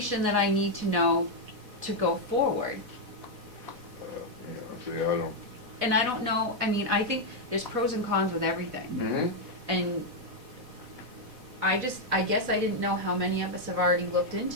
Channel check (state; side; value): late; left; 4.1 ms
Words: that I need to know to go forward. See, I don't. And I don't know, I think there's pros and cons with everything. Mm-hmm. And I guess I didn't know how many of us have already looked